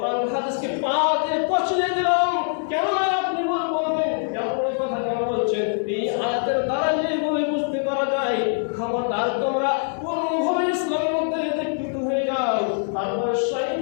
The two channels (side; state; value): right; silent; 59 dB below the other